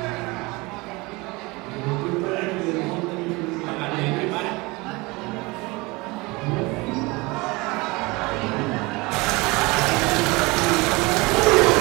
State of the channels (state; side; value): quieter; left; 24.3 dB